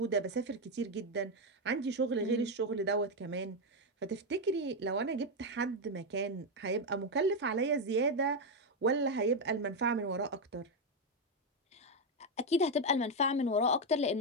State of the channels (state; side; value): normal; both; correlation 0.05